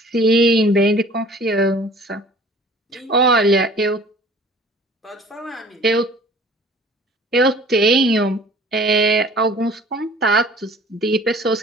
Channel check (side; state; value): both; normal; correlation 0.49